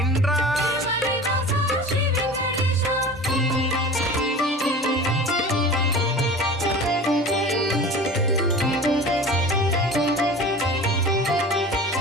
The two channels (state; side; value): normal; both; correlation 0.37